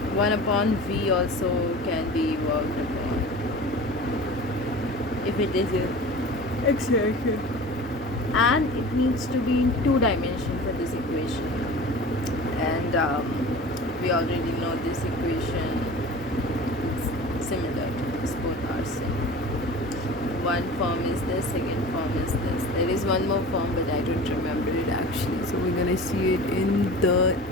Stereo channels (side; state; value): both; normal; correlation 0.37